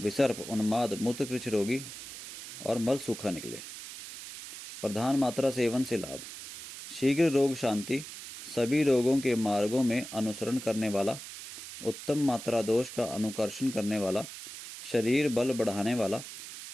उन्माद, मूत्रकृच रोगी और मल सूखा निकले। प्रधान मात्रा सेवन से लाभ: शीघ्र रोग शांति, सभी रोगों के मार्गों में अनुसरण करने वाला, उत्तम मात्रा दोष का अनुकर्षण करने वाला, शरीर बल बढ़ाने वाला,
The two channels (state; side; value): noise; right; hiss, 11 dB below the sound